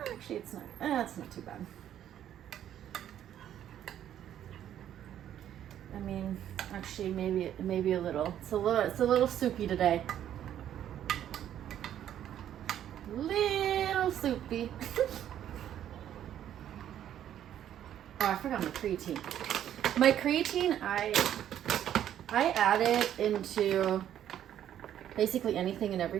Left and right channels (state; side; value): quieter; left; 10.8 dB